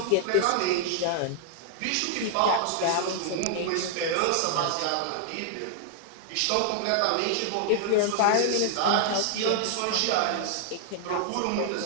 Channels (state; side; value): different; both; correlation 0.00